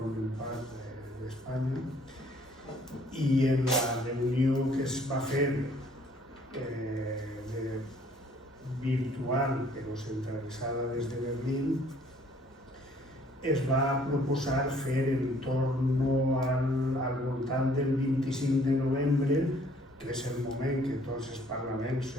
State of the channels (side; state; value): both; normal; correlation 0.60